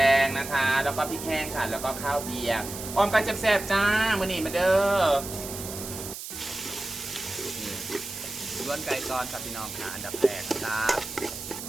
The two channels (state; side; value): noise; right; hiss, 9 dB below the sound